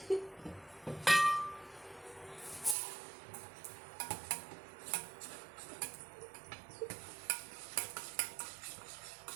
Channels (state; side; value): drops out; left; at 2.8 s